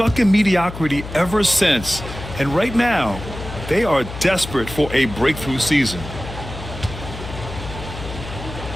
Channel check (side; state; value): left; noise; hum, 11 dB below the sound